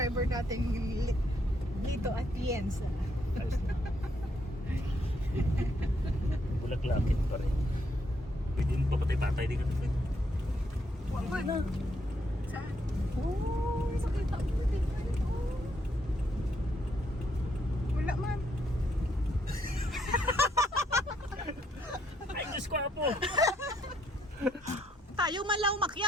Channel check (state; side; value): normal; both; correlation 0.73